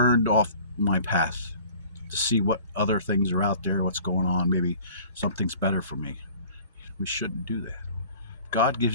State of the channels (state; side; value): inverted; both; correlation -0.47